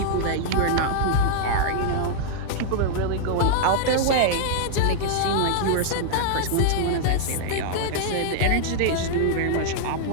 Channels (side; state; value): both; different; correlation -0.01